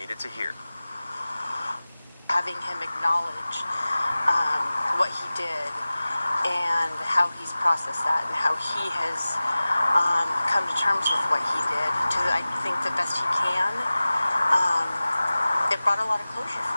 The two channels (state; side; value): inverted; both; correlation -0.97